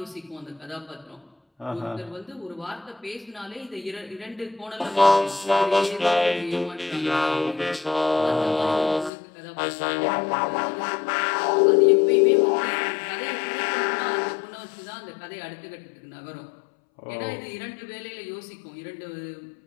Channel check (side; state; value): right; drops out; at 9.1 s